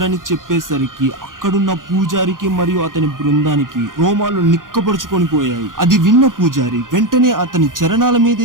చెప్పేసరికి అక్కడున్న పూజారికి మరియు అతని బృందానికి రోమాలు నిక్కపరుచుకొని పోయాయి. అది విన్న పూజారి వెంటనే అతని చరణాల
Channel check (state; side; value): late; left; 0.90 ms